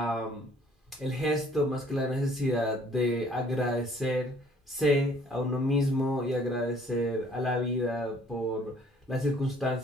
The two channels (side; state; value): both; normal; correlation 0.58